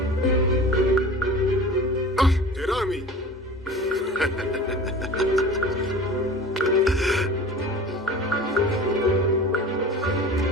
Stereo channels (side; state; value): both; normal; correlation 0.38